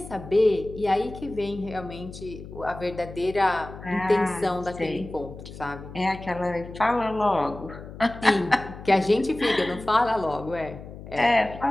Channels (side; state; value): left; noise; hum, 14 dB below the sound